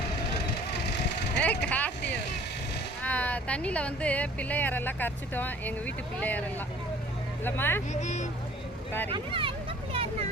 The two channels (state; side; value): normal; both; correlation 0.52